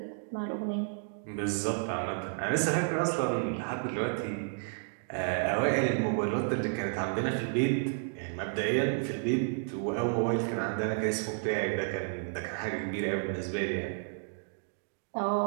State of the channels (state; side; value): silent; left; digital silence